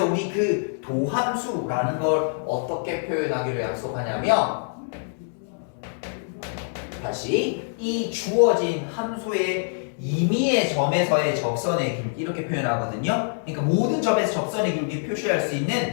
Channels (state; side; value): silent; right; digital silence